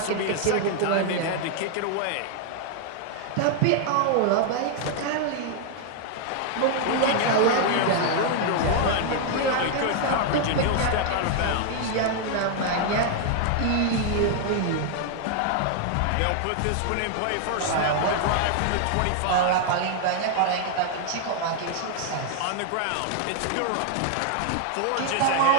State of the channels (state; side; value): different; both; correlation 0.00